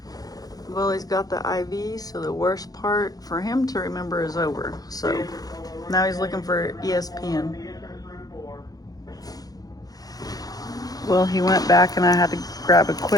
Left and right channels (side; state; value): right; late; 0.18 ms